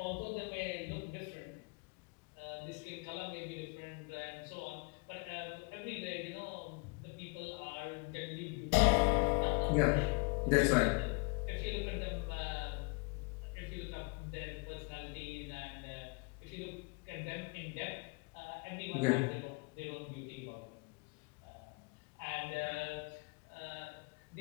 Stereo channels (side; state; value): right; quieter; 31.1 dB